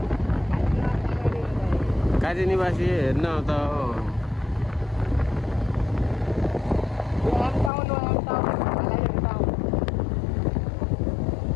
काजी निवासी हेर्न त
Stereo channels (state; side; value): drops out; right; at 7.7 s